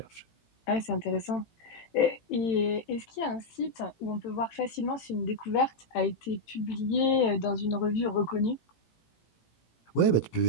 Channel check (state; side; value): late; right; 18 ms